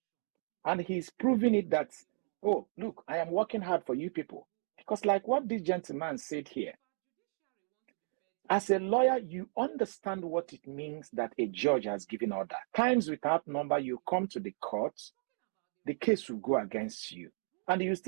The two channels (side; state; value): left; silent; 55 dB below the other